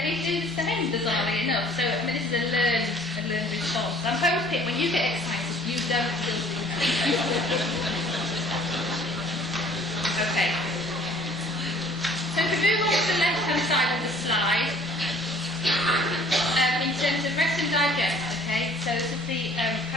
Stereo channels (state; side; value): normal; both; correlation 0.54